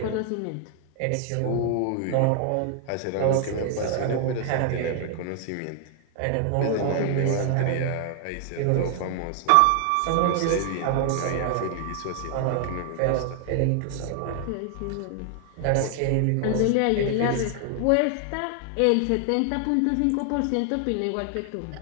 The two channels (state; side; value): different; both; correlation 0.00